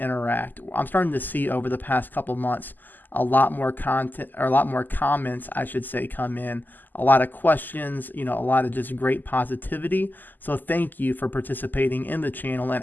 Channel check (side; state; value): right; late; 0.087 ms